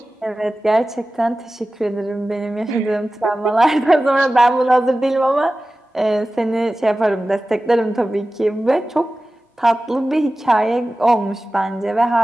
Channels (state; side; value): normal; both; correlation 0.96